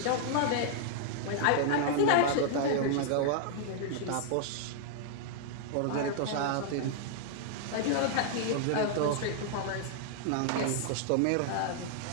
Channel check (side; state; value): both; different; correlation -0.01